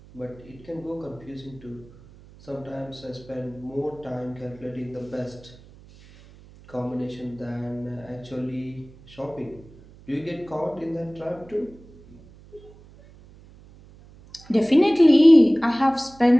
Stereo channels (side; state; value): right; noise; hum, 23 dB below the sound